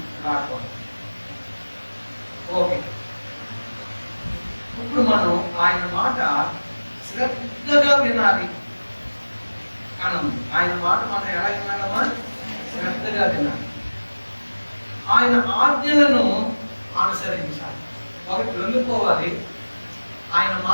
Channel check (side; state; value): both; inverted; correlation -1.00